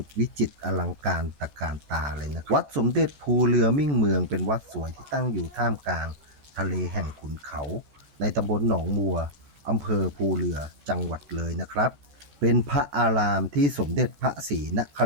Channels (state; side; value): late; left; 14 ms